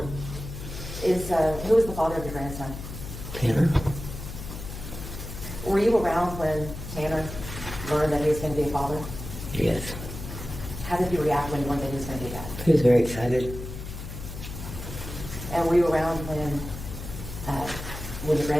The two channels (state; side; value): noise; left; hum, 9 dB below the sound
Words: is the father of your grandson? Tanner. Were you around when Tanner learned that he was going to be a father? Yes. How did you react when you learned that he was going to be that? He was very excited. And were you around when your